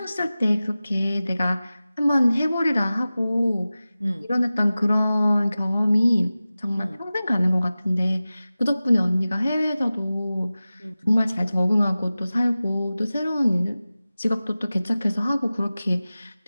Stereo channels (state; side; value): inverted; both; correlation -0.96